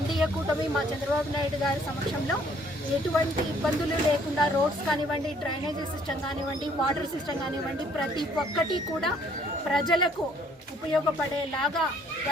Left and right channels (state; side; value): normal; both; correlation 0.62